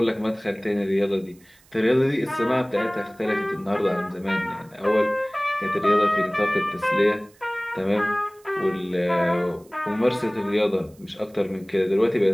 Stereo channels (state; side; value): noise; right; hiss, 29 dB below the sound